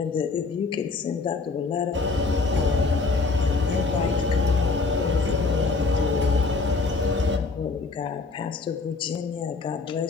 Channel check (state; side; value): quieter; right; 4.0 dB